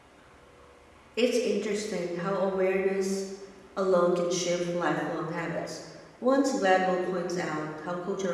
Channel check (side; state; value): both; identical; correlation 1.00